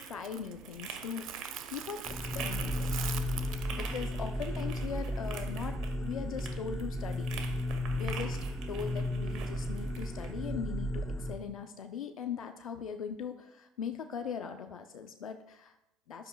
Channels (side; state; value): both; normal; correlation 0.68